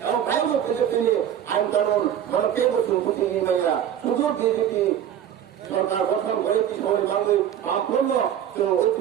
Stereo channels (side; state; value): left; quieter; 9.9 dB